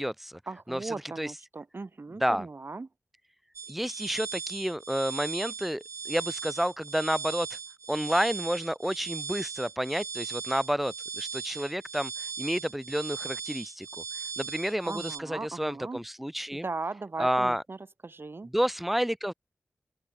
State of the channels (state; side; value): normal; both; correlation 0.86